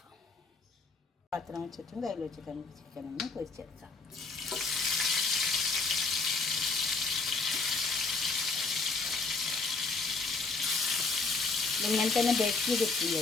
പാത്രം വെച്ചിട്ടും കയ്യിൽ വെച്ചിട്ട് നമുക്ക് ചിക്കൻ ഒന്ന് പൊരിച്ചെടുക്കാം. ഇങ്ങനെ തന്നെ ബേക്ക് ചെയ്തിട്ട്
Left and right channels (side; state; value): right; quieter; 4.1 dB